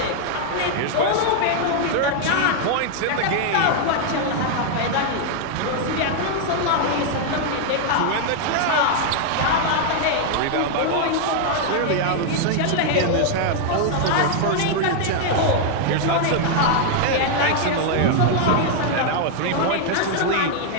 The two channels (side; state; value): both; different; correlation 0.00